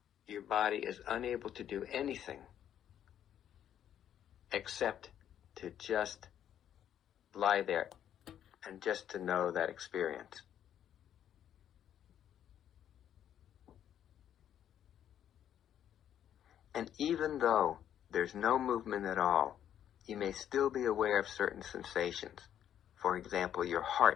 your body is unable to do anything except to just lie there and just to know that experience. And even though there's no movement at all, you may still be aware of certain sensations. For example, your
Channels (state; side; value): quieter; right; 10.2 dB